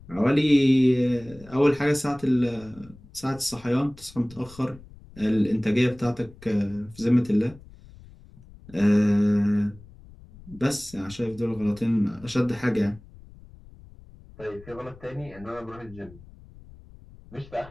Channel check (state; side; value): noise; left; rumble, 21 dB below the sound